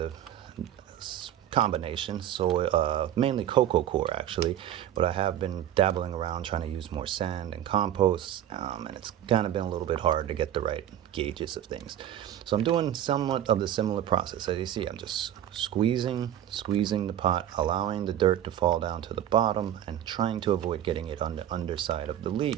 combination soil, mainly cocoa coir actually, but I have been dabbling around trying to use more sand and compost, and it's kind of been a little bit hard to get the right gauges of things. So I'm doing somewhat of the similar process. As you see, I'm just squeezing the pot, allowing the dirt to fall down to the bottom, and trying to avoid getting it on the underside of the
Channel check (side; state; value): left; quieter; 11.3 dB